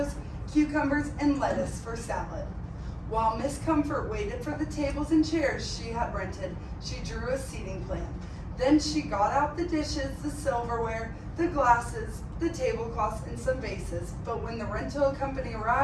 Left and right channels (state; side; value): identical; both; correlation 1.00